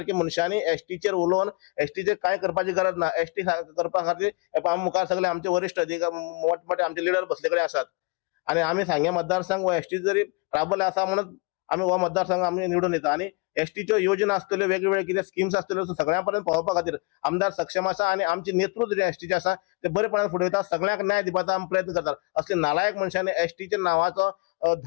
मनशांनी एसटीचेर उलोवन एसटीचेर कांय करपाची गरज ना। एसटी करपा खातीर आमी मुखार सगळे आमचे वरिश्ठ अधिकारी मोठमोठे आमचे लिडर बसले कडेन आसात आनी आमी सांगे मतदारसंघ वा एसटी जरी राबले आसा म्हणून आमी हो मतदारसंघ आमी निवडून येता आनी एसटीच्यो योजना आसतल्यो वेगवेगळ्यो कितें स्किम्स आसतल्यो सगळ्या पर्यंत पावोवपा खातीर आमदार सक्षम आसा आनी आमचे नेतृत्व जे एसटीचे आसा ते बरेपणान फुडें वयता सगळ्यांक न्याय दिवपाचो आमी प्रयत्न करतात। असले नालायक मनशांनी एसटीच्या नांवाचो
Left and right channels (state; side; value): quieter; right; 29.6 dB